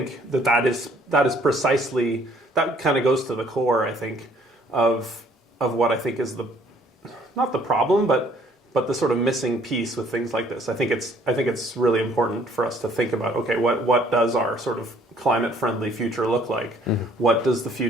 that is precisely that kind of goes to the core, I think, of what I think is not the problem, but the sort of missing piece with things like this. I think it's really important for us to think about, okay, what does our sort of climate friendly future look like? Mm-hmm. What does the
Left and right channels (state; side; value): normal; both; correlation 0.60